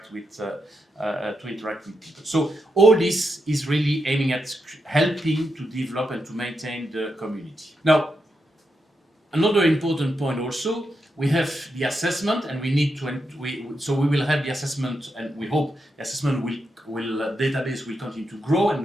with people. So all this is really aiming at helping to develop and to maintain the community. Now, another important point also, we have the assessment, and we need to. So we will have the assessment, and we hope the assessment database will continue to grow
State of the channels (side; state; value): both; normal; correlation 0.84